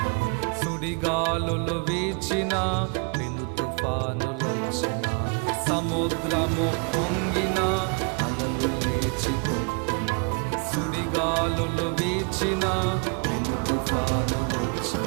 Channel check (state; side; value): quieter; left; 34.6 dB